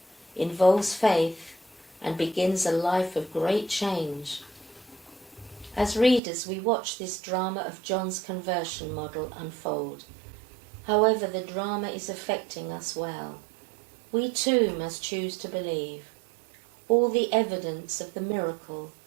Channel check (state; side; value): drops out; left; at 6.2 s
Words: involves faith, and begins a life of great change. As readers, we watch this drama of John's conversion model unfold. However, the drama is affecting us well. We too must choose to believe. All the evidence of the miracle